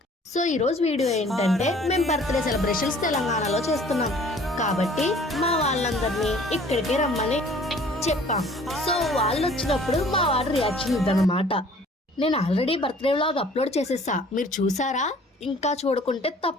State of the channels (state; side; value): normal; both; correlation 0.53